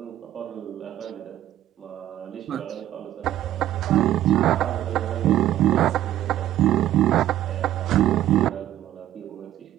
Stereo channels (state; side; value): quieter; left; 12.7 dB